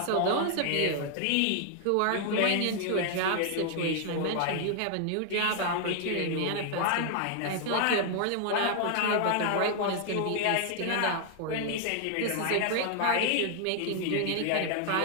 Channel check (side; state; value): both; different; correlation 0.00